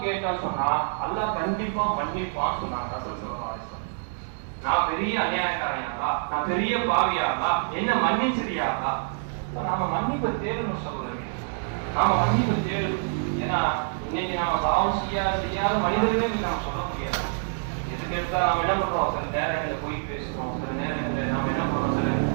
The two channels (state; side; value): silent; left; digital silence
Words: கேட்டா சொன்னா அல்லாஹ் கண்டிப்பா மன்னிப்பான்னு சொன்னாங்க ரசூல் ஸல்லல்லாஹு அலைஹி வஸல்லம். நான் பெரிய அநியாயக்காரன் யா அல்லாஹ், நான் பெரிய பாவி யா அல்லாஹ், என்ன மன்னிச்சிரியா அல்லாஹ். நாம மன்னிப்பை தேடணும் சகோதரர்களே, நாம மன்னிப்பை தேடணும். ஏன்னா இன்னைக்கு நாம பாவம் செய்யாத மனிதர்களே நாம சொல்ல முடியாது. எதுக்கு எடுத்தா நம்ம என்ன பண்றோம், சில நேரங்களில் போய் பேசுறோம், சில நேரங்களில் நாம என்ன பண்றோம்,